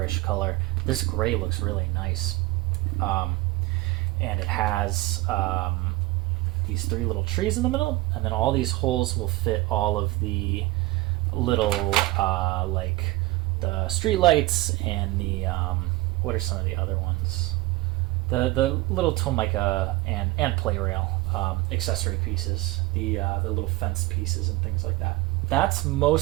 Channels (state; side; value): quieter; left; 19.7 dB